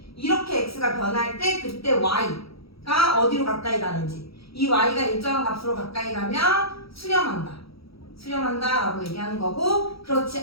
이렇게 x가 변할 때 그때 y가 어디로 가까이 가는지, 이 y가 일정한 값으로 가까이 가면 수렴한다 라고 얘기하는 거고,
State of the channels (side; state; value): right; late; 0.76 ms